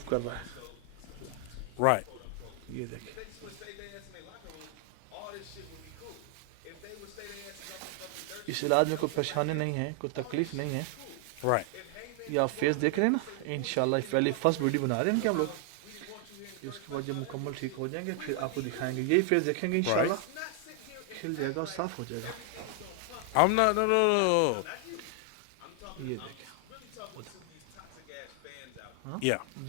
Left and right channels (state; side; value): different; both; correlation 0.00